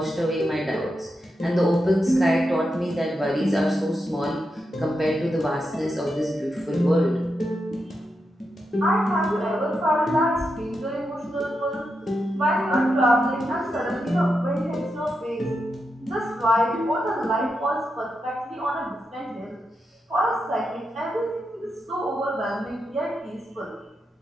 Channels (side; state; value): both; normal; correlation 0.86